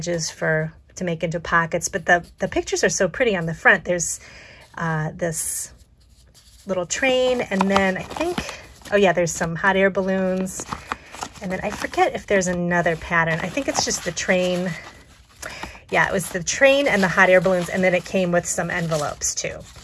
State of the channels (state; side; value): identical; both; correlation 1.00